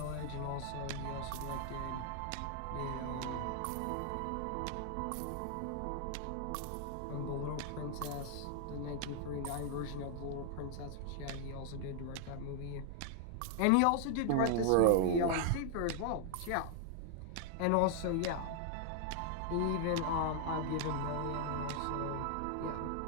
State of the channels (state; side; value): different; both; correlation 0.00